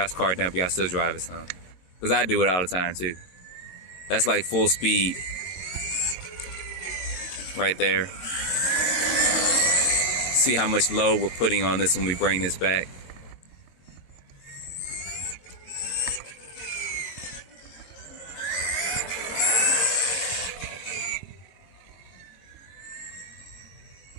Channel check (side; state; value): right; late; 22 ms